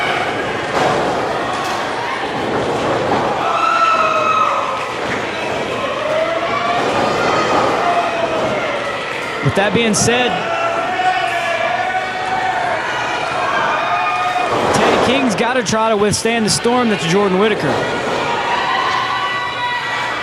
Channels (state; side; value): identical; both; correlation 1.00